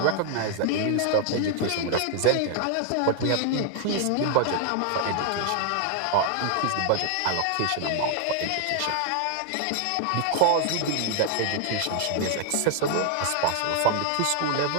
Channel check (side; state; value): both; different; correlation 0.00